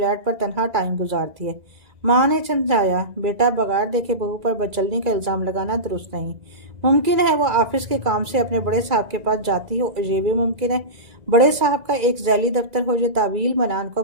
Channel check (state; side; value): late; left; 2.0 ms